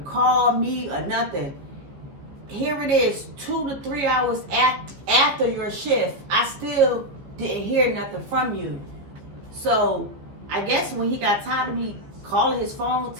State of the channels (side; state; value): left; late; 15 ms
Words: call me or nothing. Here it is, 2 to 3 hours after your shift. I still didn't hear nothing from you. So I guess when he got tired of me calling his phone,